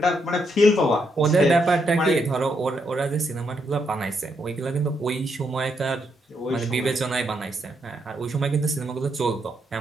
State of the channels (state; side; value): normal; both; correlation 0.78